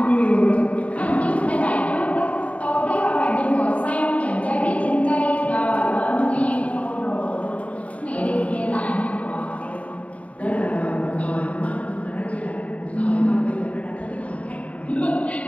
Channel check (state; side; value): late; right; 0.066 ms